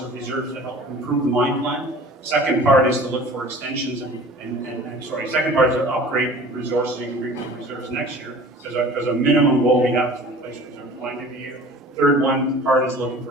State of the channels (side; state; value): both; normal; correlation 0.44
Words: or reserves to help improve the mine plan. Second part is to look for extensions second part is to upgrade resources and bring to reserves next year, because a minimum goal we have is to replace reserves line every year. Third part is looking